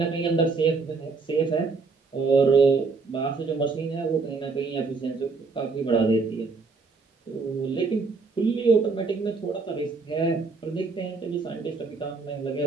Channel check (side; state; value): left; quieter; 4.3 dB